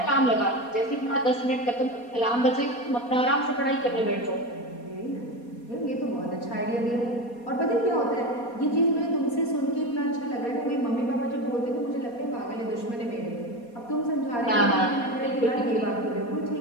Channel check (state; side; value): late; right; 4.2 ms